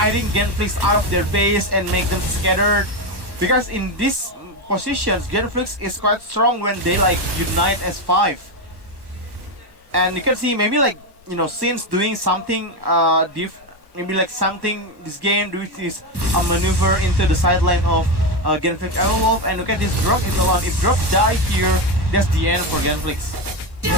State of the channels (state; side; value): late; left; 1.2 ms